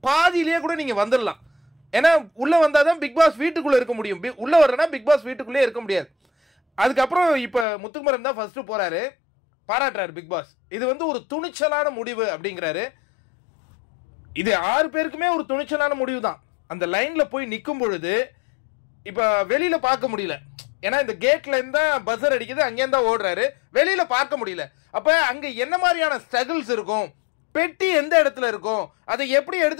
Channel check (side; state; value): right; drops out; at 7.7 s